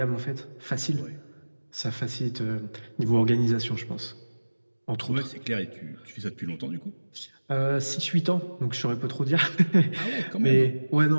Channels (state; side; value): inverted; both; correlation -1.00